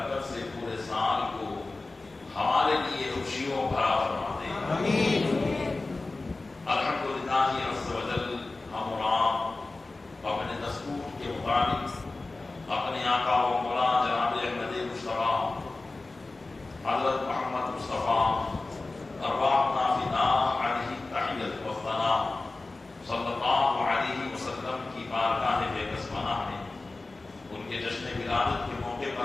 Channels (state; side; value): quieter; right; 3.3 dB